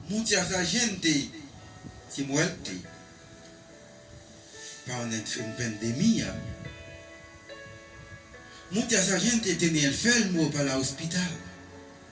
Mucha gente se muere por una pandemia. Mucha gente tiene enfermo para el hospital.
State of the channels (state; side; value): identical; both; correlation 1.00